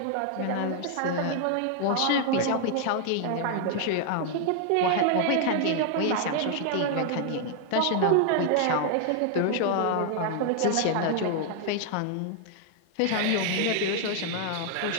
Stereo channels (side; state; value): both; different; correlation 0.00